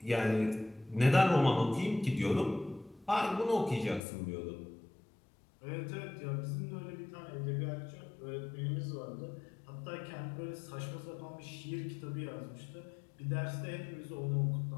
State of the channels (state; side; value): drops out; right; at 4.0 s